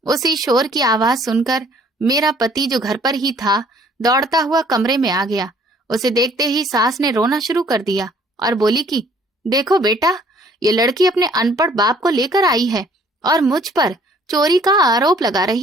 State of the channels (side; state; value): both; normal; correlation 0.59